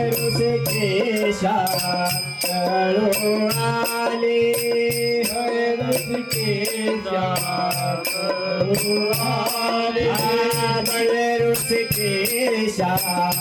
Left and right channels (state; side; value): identical; both; correlation 1.00